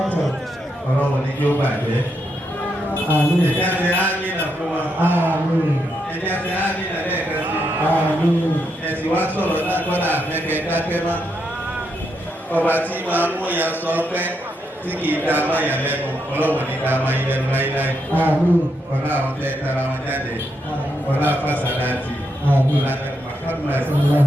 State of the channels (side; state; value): both; normal; correlation 0.81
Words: ọlọ́run ní kí ó bàjẹ́. Àmín. Ìjáde ámìnà fún wọn. Àmín. Ẹni àti àmì ìrẹ̀lẹ̀ kan sí. Àmín. Ẹ̀sìn wá sọ̀rọ̀ náà kọ́lá àfẹ́kẹ́ dákẹ́ má. Ọba tí máa mú ìyá sọ pé tí kì í dá máa yà lẹ́nu, ọlọ́wọ̀n ní dá máa yẹ lẹ́nu láíláí. Àmín. Ọlá àwọn tẹ́ tara wọn jáde. Ọlá fásánátì. Àmín. Ọlá Muhammad.